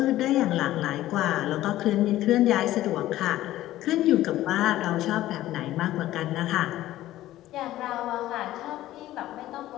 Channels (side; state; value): right; quieter; 14.7 dB